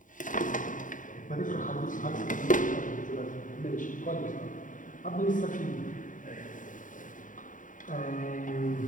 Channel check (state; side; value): late; right; 0.38 ms